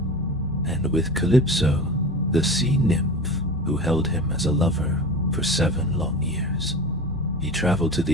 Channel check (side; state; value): both; normal; correlation 0.31